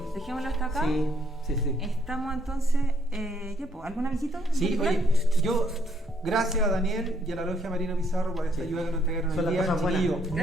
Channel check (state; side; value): normal; both; correlation 0.70